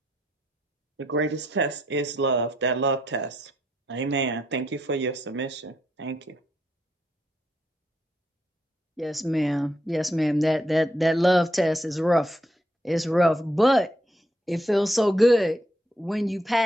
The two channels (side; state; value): both; normal; correlation 0.77